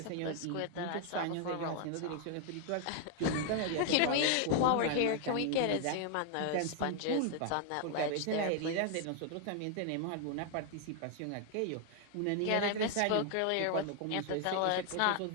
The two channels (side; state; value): both; different; correlation 0.00